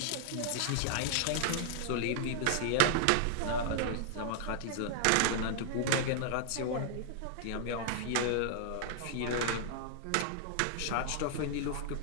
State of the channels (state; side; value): different; both; correlation -0.01